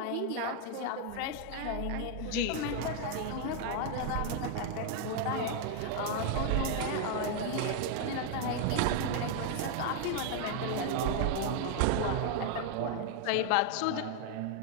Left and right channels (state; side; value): different; both; correlation 0.00